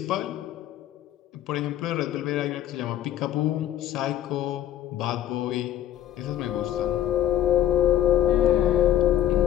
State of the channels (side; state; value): right; quieter; 11.8 dB